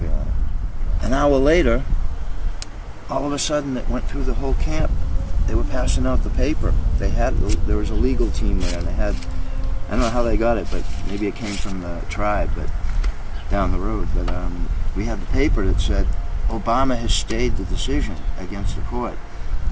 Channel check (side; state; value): both; identical; correlation 1.00